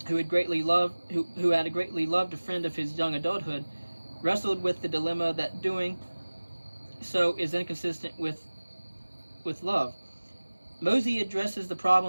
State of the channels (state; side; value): inverted; both; correlation -1.00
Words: who had greatly loved a friend of his young adulthood, wrestled with the dilemma that doing so is inconsistent with love. Mosey addresses the